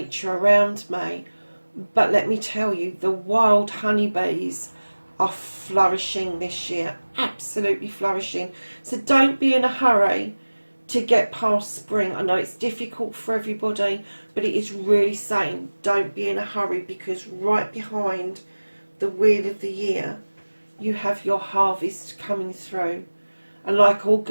around me, but let me tell you, the wild honeybees are flourishing this year, absolutely flourishing. So don't be in a hurry to get past spring. I know it's difficult for everybody, but it is really saying don't be in a hurry, because right behind the Wheel of the Year you have your harvest coming through. And like all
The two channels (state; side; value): inverted; both; correlation -1.00